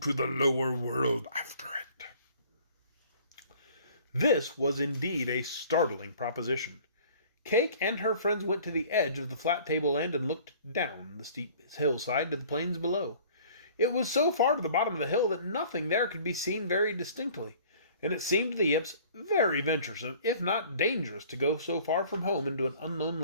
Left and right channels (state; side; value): inverted; both; correlation -0.51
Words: the lower world after it." This was indeed a startling proposition. Cayke and her friends went to the edge of the flat tableland and looked down the steep hillside to the plains below. It was so far to the bottom of the hill that nothing there could be seen very distinctly, and it seemed to the Yips very venturesome, if not dangerous, to go so far from home into an unknown